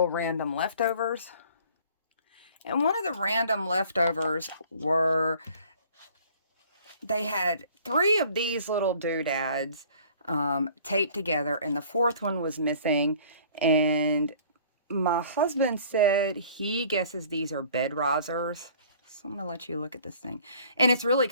random leftovers. And one of the random leftovers they had 3 of these little doodads taped together, and the 4th one was missing. And my husband said he guesses these are bed risers. So I'm going to let you look at this thing. And it's really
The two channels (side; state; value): both; inverted; correlation -0.52